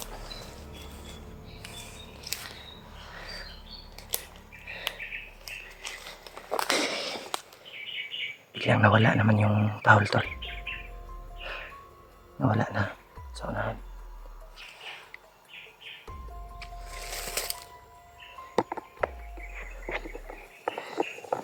Biglang nawala naman yung tahol, tol. Nawala na sa unahan.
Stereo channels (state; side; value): identical; both; correlation 1.00